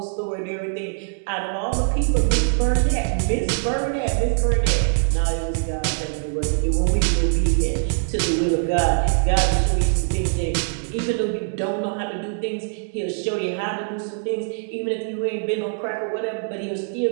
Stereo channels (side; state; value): left; silent; digital silence